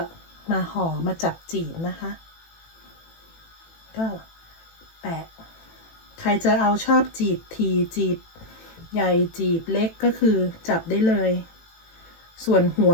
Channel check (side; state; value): right; late; 18 ms